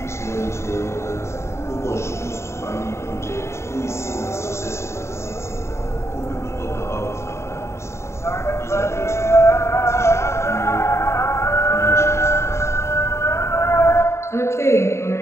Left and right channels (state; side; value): late; right; 0.13 ms